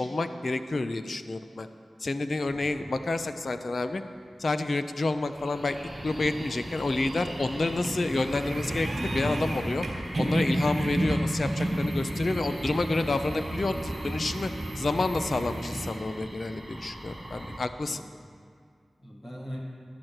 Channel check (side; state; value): both; normal; correlation 0.96